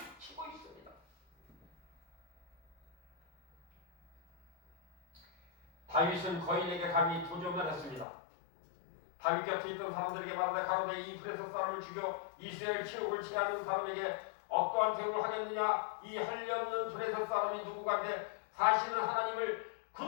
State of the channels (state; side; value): drops out; right; at 8.1 s